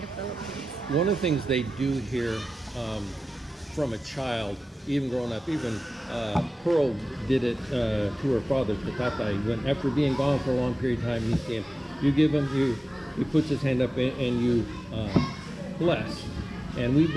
the Philippines. One of the things they do here, from a child, even growing up, even Pearl did it to her father, to Tatay, when after being gone for a long period of time, he came, you give him, he puts his hand up and you bless. And we've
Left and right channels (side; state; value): both; normal; correlation 0.94